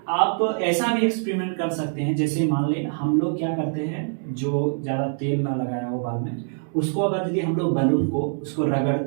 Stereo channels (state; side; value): silent; left; 62 dB below the other